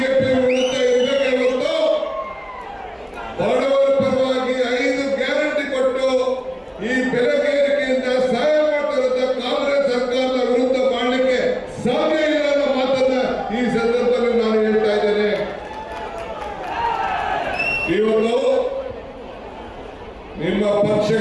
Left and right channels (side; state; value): both; identical; correlation 1.00